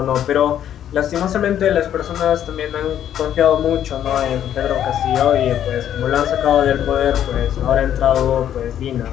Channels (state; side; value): quieter; right; 10.4 dB